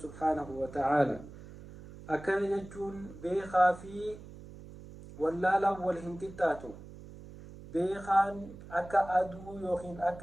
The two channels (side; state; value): right; noise; hum, 16 dB below the sound